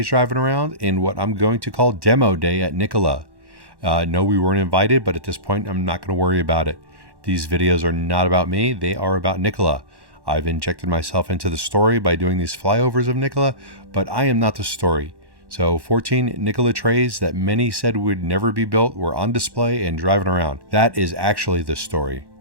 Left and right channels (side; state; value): left; late; 1.1 ms